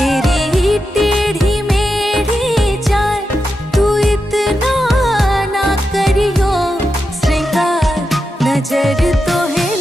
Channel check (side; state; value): both; normal; correlation 0.88